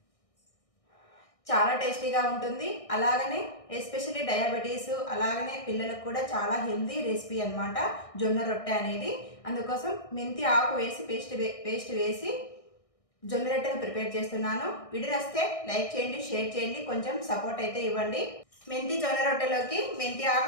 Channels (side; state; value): right; late; 1.6 ms